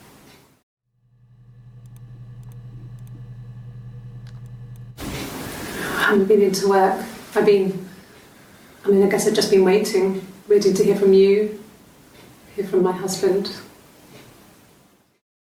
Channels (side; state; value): both; identical; correlation 1.00